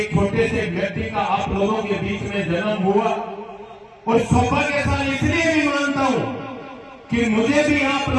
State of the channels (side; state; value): both; identical; correlation 1.00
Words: छोटे से व्यक्ति का आप लोगों के बीच में जन्म हुआ और सौभाग्यशाली इसलिए भी मानता हूँ कि मुझे भी आप